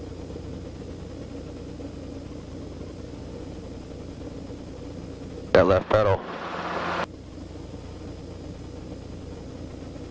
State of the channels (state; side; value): identical; both; correlation 1.00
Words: That left pedal.